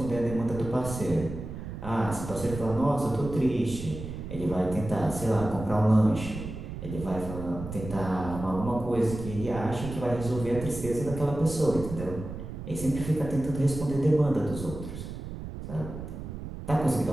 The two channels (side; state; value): right; noise; rumble, 9 dB below the sound